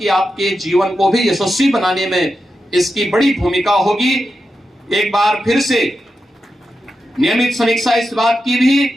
आपके जीवन को भी यशस्वी बनाने में इसकी बड़ी भूमिका होगी। एक बार फिर से नियमित समीक्षा इस बात की भी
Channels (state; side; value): normal; both; correlation 0.89